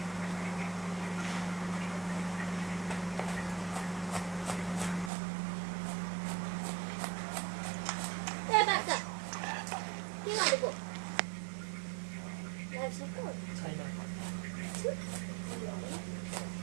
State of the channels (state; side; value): drops out; left; at 5.1 s